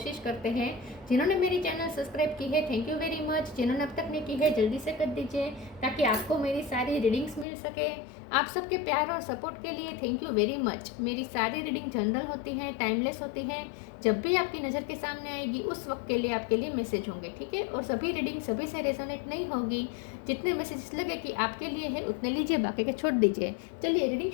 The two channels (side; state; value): right; drops out; at 7.5 s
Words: करते हैं। जिन्होंने मेरी चैनल सब्सक्राइब की है, थैंक यू वेरी मच। जिन्होंने अब तक नहीं की है, जल्दी से कर दीजिए ताकि आपको मेरी सारी रीडिंग्स मिल सके। आप सबके प्यार और सपोर्ट के लिए थैंक यू वेरी मच। मेरी सारी रीडिंग जनरल होती हैं, टाइमलेस होती हैं। जब भी आपकी नज़र के सामने आएगी उस वक्त के लिए आपके लिए मैसेज होंगे, ठीक है। और सभी रीडिंग सभी से रेजोनेट नहीं होगी। जितने मैसेजेस लगे कि आपके लिए है उतने लीजिए, बाकी के छोड़ दीजिए। चलिए रीडिंग